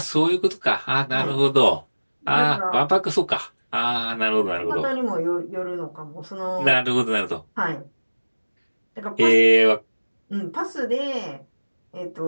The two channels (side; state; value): both; inverted; correlation -1.00